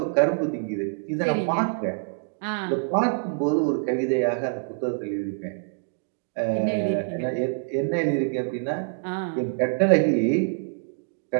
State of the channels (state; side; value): silent; left; digital silence